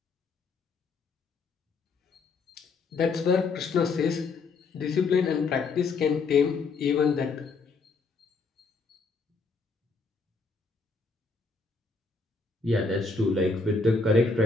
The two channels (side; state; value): right; quieter; 4.2 dB